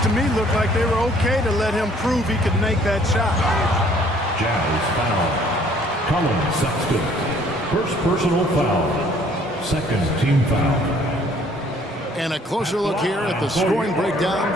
me looked like they were okay to let him prove he could make that shot. Jazz foul. Colin Sexton. First personal foul. Second team foul. And a closer look here at the scoring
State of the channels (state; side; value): normal; both; correlation 0.59